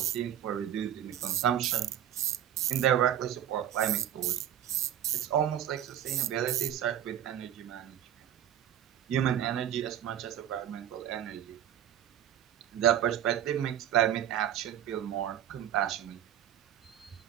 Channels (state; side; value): quieter; left; 10.7 dB